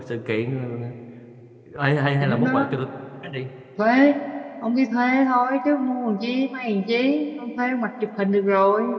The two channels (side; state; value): both; identical; correlation 1.00